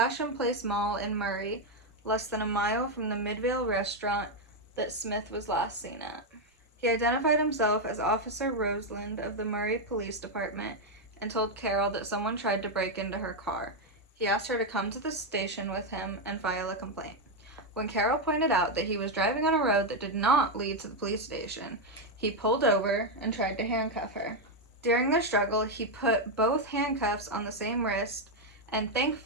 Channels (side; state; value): both; normal; correlation 0.03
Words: Place Mall in Murray, less than a mile from the Midvale restaurant that Smith was last seen at. He identified himself as Officer Roseland of the Murray Police Department and told Carol that someone tried to break into her car. He asked her to come to the station with him and file a complaint. When Carol pointed out that he was driving on a road that did not lead to the police station, he pulled over and tried to handcuff her. During their struggle, he put both handcuffs on the same wrist, and